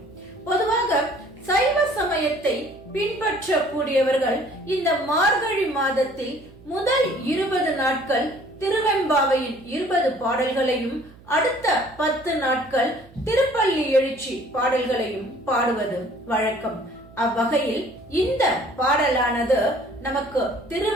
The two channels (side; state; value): right; noise; hum, 23 dB below the sound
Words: பொதுவாக சைவ சமயத்தை பின்பற்றக்கூடியவர்கள் இந்த மார்கழி மாதத்தில் முதல் 20 நாட்கள் திருவெம்பாவையின் 20 பாடல்களையும் அடுத்த 10 நாட்கள் திருப்பள்ளி எழுச்சி பாடல்களையும் பாடுவது வழக்கம். அவ்வகையில் இந்த பாடலானது நமக்கு